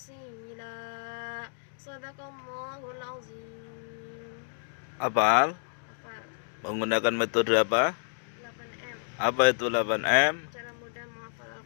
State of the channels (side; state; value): right; silent; digital silence